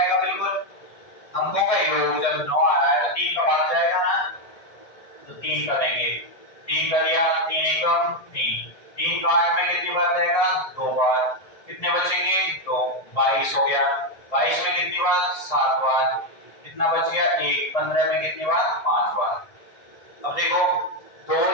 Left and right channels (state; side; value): late; right; 1.7 ms